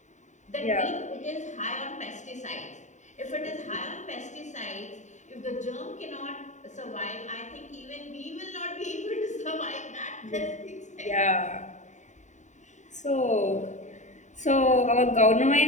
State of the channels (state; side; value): late; right; 0.35 ms